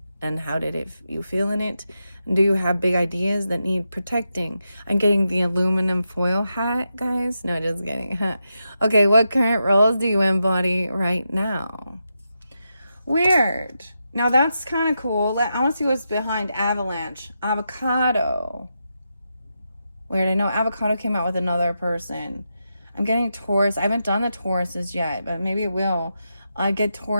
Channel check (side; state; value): both; inverted; correlation -0.86